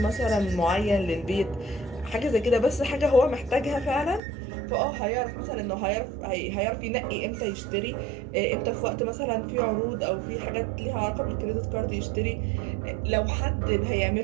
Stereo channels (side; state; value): left; drops out; at 4.2 s